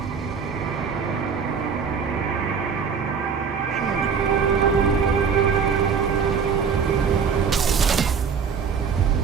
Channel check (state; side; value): quieter; left; 6.3 dB